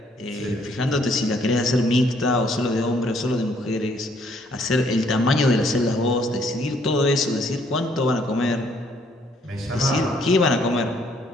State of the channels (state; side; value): normal; both; correlation 0.66